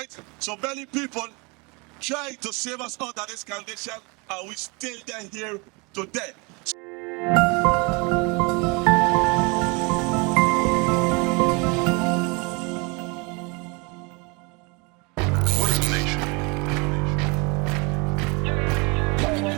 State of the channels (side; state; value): left; quieter; 29.2 dB